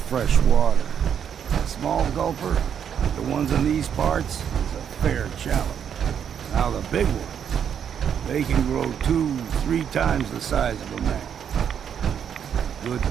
fresh water. A small gulper, like the ones in these parts, is a fair challenge. Now the big ones, they can grow 2-3 times the size of a man. Good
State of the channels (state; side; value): quieter; left; 8.3 dB